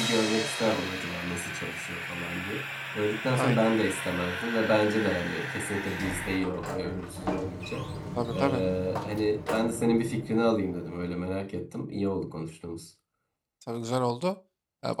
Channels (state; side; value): identical; both; correlation 1.00